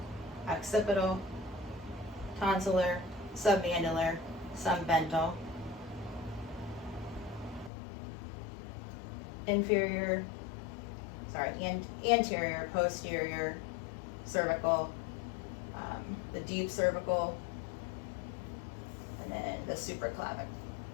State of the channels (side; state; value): right; drops out; at 7.7 s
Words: occipital, tonsillar, submandibular, submental, anterior, posterior, cervical, the deep cervical, and then the supraclavic.